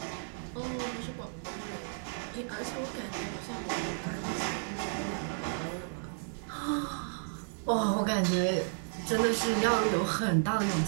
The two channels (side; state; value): left; silent; digital silence